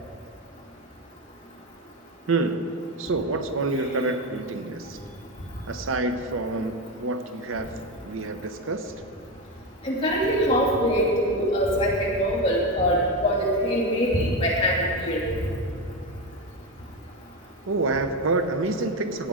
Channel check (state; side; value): normal; both; correlation 0.15